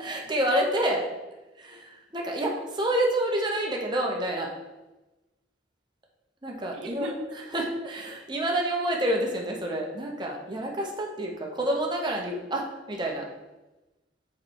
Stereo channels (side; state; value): both; normal; correlation 0.38